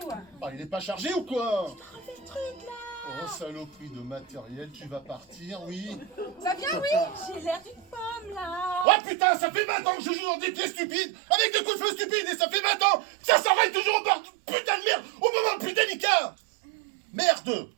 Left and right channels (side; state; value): left; drops out; at 8.8 s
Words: Ah, il est pas chargé ou quoi? Refais le truc là. Oh, saloperie de matériel, tu vas partir, oui. Ça vient, oui? J'ai l'air d'une pomme là. Oh putain, ça fait 20 ans que je joue dans des pièces stupides, avec des coups de feu stupides, et ça fait 20 ans que ça s'enraye toujours au bord de putain de merde, au moment le plus délicat. Merde.